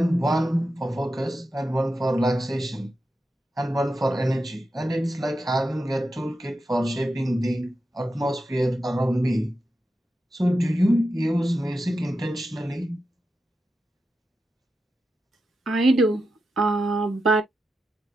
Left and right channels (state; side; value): normal; both; correlation 0.89